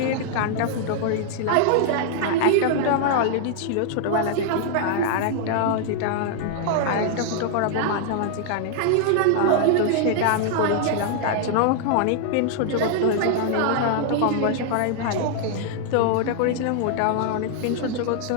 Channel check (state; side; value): different; both; correlation 0.00